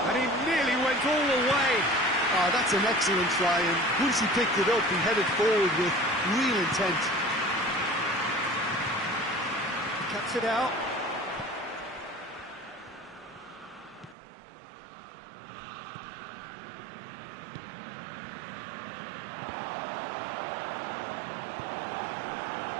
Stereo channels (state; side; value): drops out; left; at 14.2 s